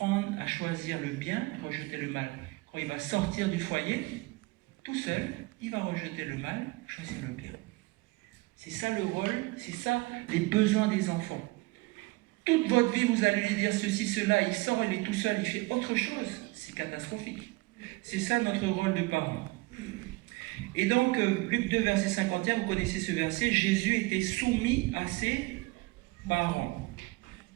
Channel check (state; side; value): quieter; left; 23.0 dB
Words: à choisir le bien, rejeter le mal. Quand il va sortir du foyer, tout seul, il va rejeter le mal, choisir le bien. C'est ça le rôle, c'est ça les besoins des enfants. Toute votre vie, vous allez lui dire ceci, cela, il sort, il est tout seul, il fait autre chose. C'est catastrophique. C'est ça notre rôle de parent. Et donc, Luc 2, verset 51, vous connaissez ce verset, Jésus était soumis à ses parents.